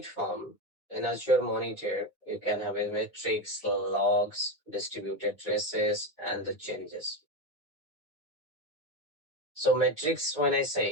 in Azure Monitor, you can have metrics, logs, distributed traces, and the changes. So metrics, when I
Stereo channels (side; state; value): both; normal; correlation 0.15